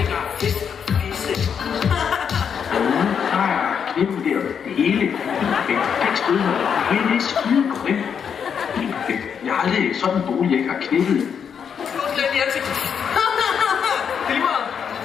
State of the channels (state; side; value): quieter; right; 7.3 dB